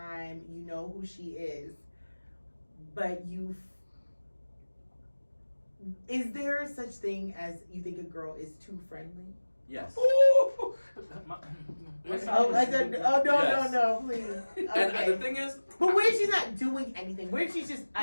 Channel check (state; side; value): inverted; both; correlation -1.00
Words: You know who she is, but is there such thing as you think a girl is too friendly? Yes. No, please. Okay. And the thing is, but what if she's not doing anything? What if she's just